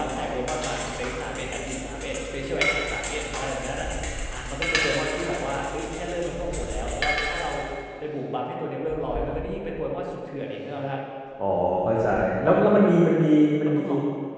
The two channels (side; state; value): both; identical; correlation 1.00